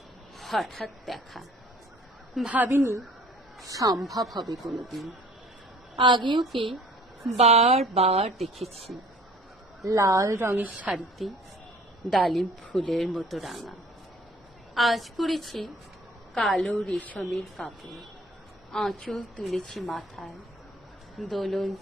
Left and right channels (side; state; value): both; normal; correlation 0.51